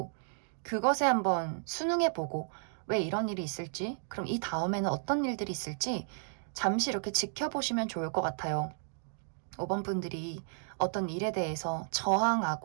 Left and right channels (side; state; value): left; silent; digital silence